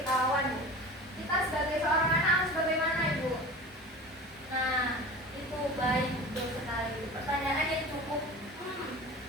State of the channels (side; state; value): both; normal; correlation 0.35